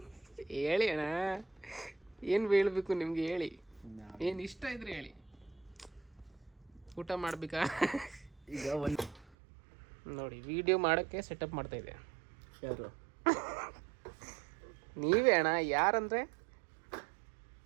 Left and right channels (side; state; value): left; drops out; at 9.3 s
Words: ಹೇಳಿ ಅಣ್ಣ, ಏನು ಹೇಳ್ಬೇಕು ನಿಮ್ಗೆ? ಹೇಳಿ, ಏನು ಇಷ್ಟ ಇದ್ರೆ ಹೇಳಿ. ಊಟ ಮಾಡ್ಬೇಕಾ? ಈಗ ಒಂದು ನೋಡಿ, ವಿಡಿಯೋ ಮಾಡೋಕ್ಕೆ ಸೆಟಪ್ ಮಾಡ್ತಾ ಇದೆ. ಯಾರು? ನೀವೇ ಅಣ್ಣ. ಯಾರಂದರೆ